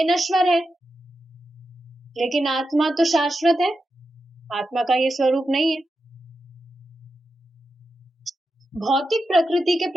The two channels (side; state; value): both; normal; correlation 0.89